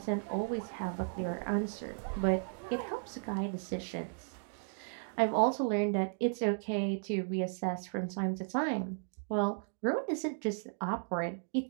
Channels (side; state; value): left; silent; digital silence